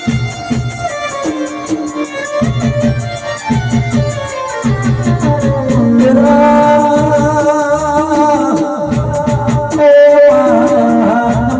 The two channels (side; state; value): both; identical; correlation 1.00